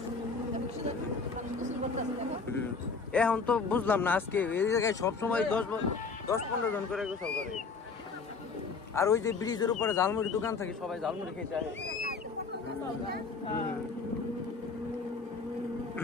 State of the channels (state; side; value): quieter; right; 4.7 dB